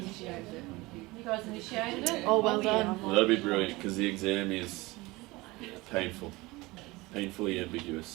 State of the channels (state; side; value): quieter; left; 21.8 dB